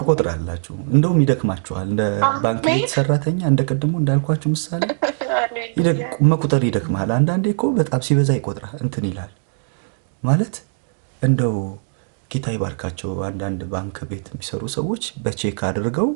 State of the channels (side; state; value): left; silent; digital silence